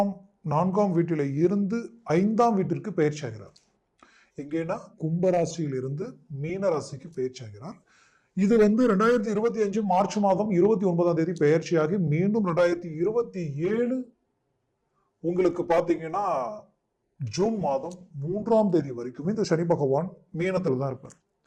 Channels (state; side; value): identical; both; correlation 1.00